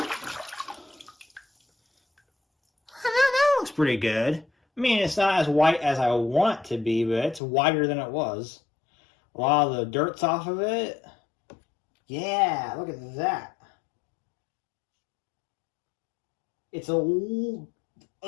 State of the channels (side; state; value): right; drops out; at 7.4 s